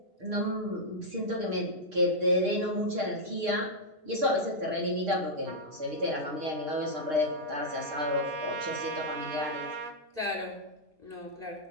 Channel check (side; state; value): left; late; 6.5 ms